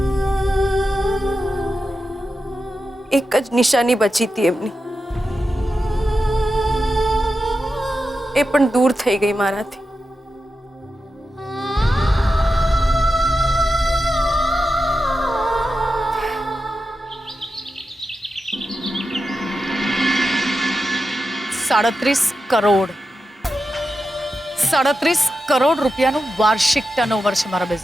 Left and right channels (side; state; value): both; normal; correlation 0.90